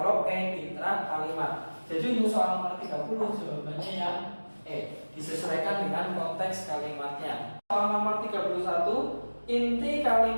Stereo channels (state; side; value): inverted; both; correlation -1.00